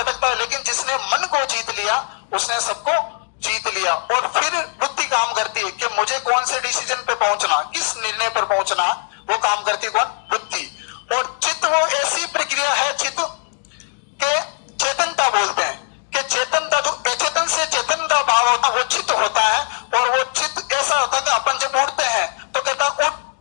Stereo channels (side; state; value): right; silent; digital silence